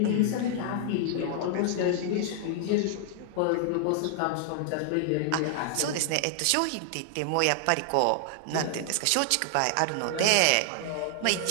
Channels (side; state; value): both; different; correlation 0.00